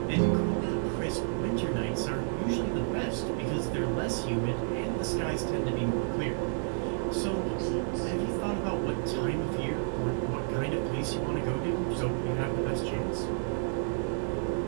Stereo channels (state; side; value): silent; left; digital silence